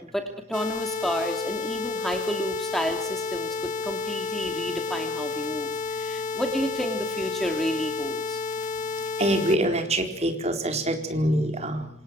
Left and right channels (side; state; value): both; normal; correlation 0.57